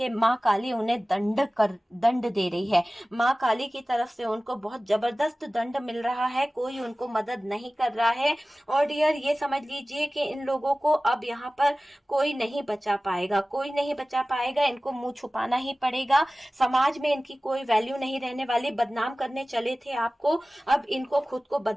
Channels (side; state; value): both; normal; correlation 0.97